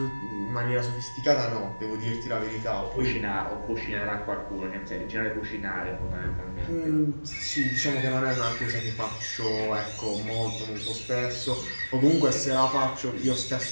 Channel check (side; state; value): both; inverted; correlation -1.00